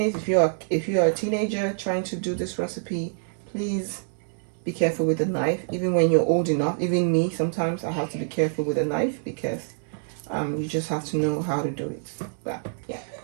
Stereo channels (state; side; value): silent; left; 61 dB below the other